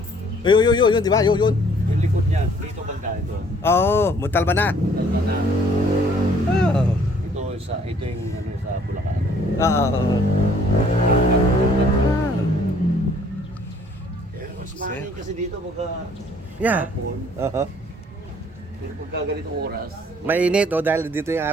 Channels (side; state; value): both; normal; correlation 0.59